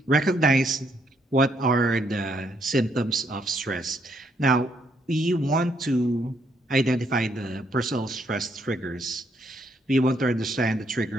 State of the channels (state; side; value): normal; both; correlation 0.73